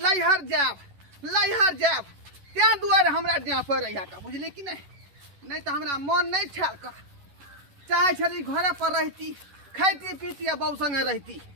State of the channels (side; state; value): left; late; 11 ms